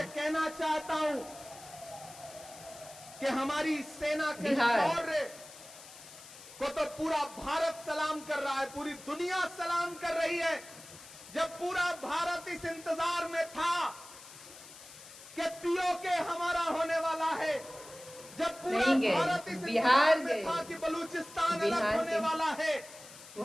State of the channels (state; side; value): noise; left; hiss, 17 dB below the sound